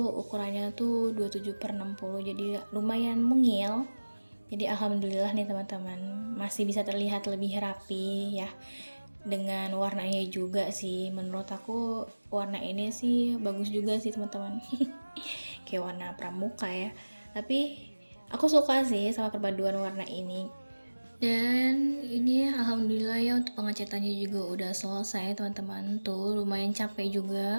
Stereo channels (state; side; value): inverted; both; correlation -1.00